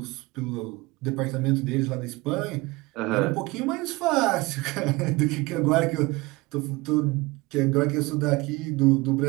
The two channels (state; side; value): quieter; left; 22.7 dB